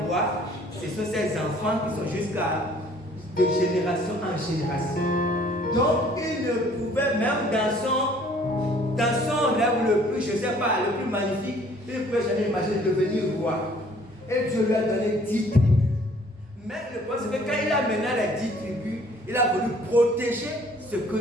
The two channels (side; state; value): both; normal; correlation 0.57